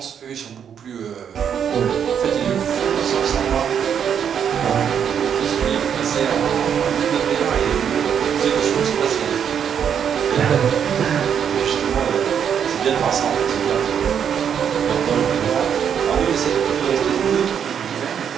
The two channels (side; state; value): left; quieter; 8.1 dB